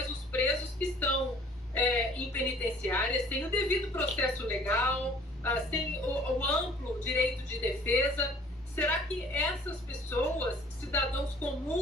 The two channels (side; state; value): both; normal; correlation 0.53